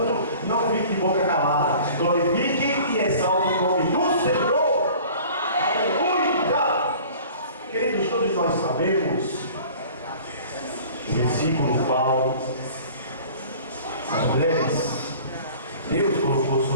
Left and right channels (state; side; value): inverted; both; correlation -0.46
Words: não fique de boca calada. Glorifique e exalte o nome do Senhor. Aleluia! Queridos, todos nós sabemos o versículo qual as mulheres Deus colocou